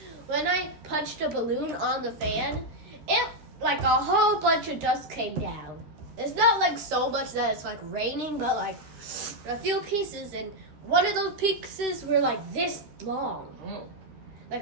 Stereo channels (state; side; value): late; left; 13 ms